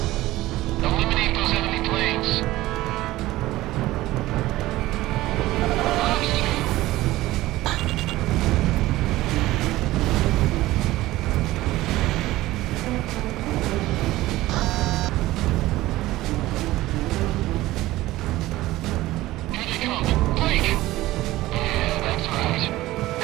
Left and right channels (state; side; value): quieter; left; 17.1 dB